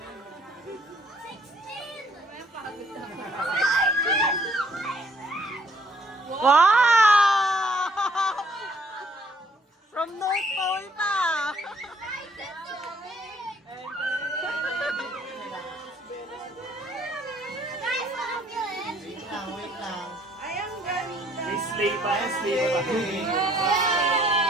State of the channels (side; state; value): both; normal; correlation 0.63